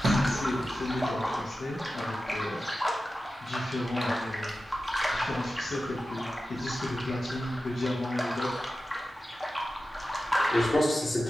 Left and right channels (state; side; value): normal; both; correlation 0.93